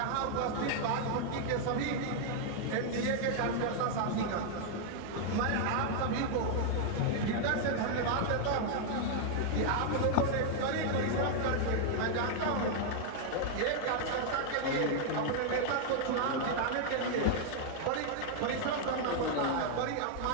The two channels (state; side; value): different; both; correlation 0.00